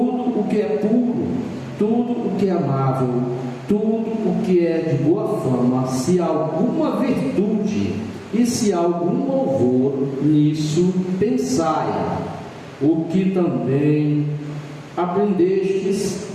o que é puro, tudo o que é amável, tudo o que é de boa fama, se há alguma virtude e se há algum louvor, nisso pensai. O que também aprendestes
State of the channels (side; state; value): both; identical; correlation 1.00